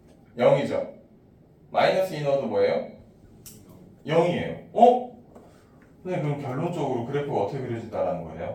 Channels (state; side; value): identical; both; correlation 1.00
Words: 0이죠. 마이너스 2 넣어도 뭐예요? 0이에요. 어? 선생님 그럼 결론적으로 그래프가 어떻게 그려진다는 거예요?